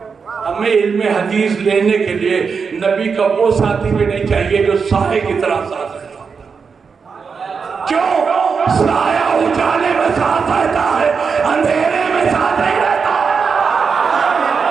हमें इल्मे हदीस लेने के लिए नबी का वो साथी भी नहीं चाहिए जो साए की तरह साथ रहता। क्यों? साया उजाले में साथ रहता है, अंधेरे में साथ नहीं रहता।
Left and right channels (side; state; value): left; quieter; 5.6 dB